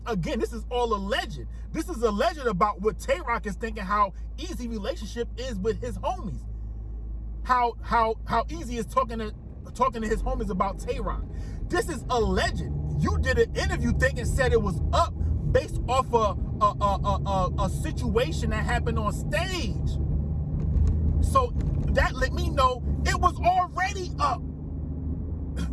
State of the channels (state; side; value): identical; both; correlation 1.00